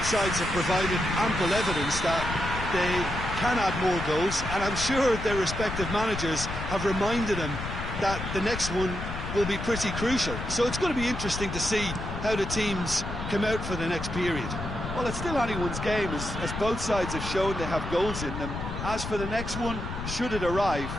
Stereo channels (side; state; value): left; noise; rumble, 6 dB below the sound